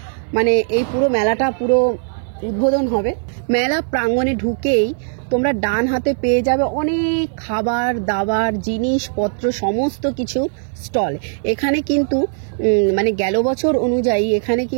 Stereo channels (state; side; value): silent; left; 61 dB below the other